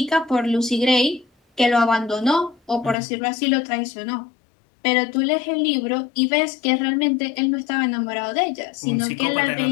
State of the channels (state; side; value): drops out; right; at 3.0 s